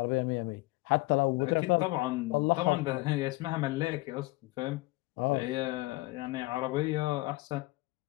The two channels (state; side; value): quieter; right; 21.4 dB